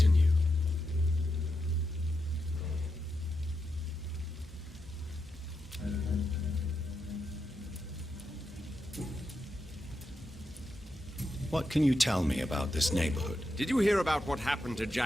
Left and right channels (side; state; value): both; normal; correlation 0.86